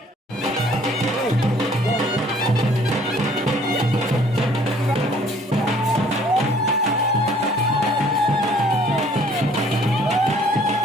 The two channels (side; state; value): both; normal; correlation 0.58